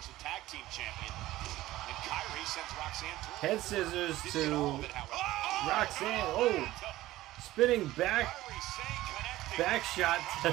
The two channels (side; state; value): left; quieter; 16.2 dB